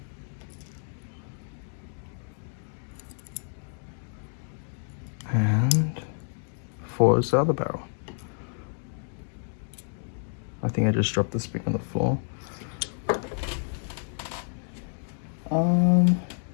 And 4 is the other barrel. I think I just dropped the spring on the floor.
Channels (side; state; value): right; silent; 58 dB below the other